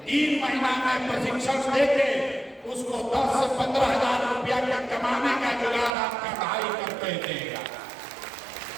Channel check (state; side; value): drops out; left; at 5.9 s